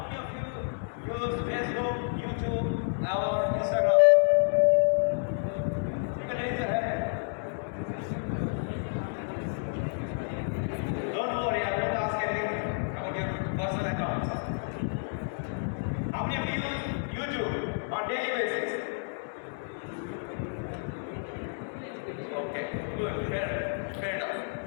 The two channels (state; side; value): silent; right; digital silence